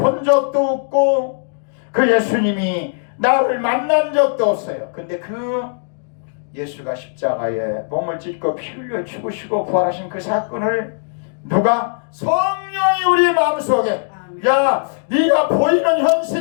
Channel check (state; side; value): silent; right; digital silence